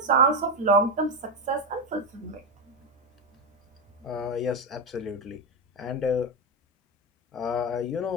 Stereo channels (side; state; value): both; normal; correlation 0.10